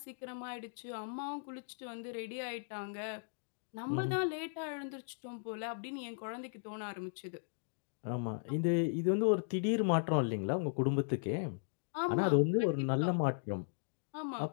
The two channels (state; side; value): silent; right; digital silence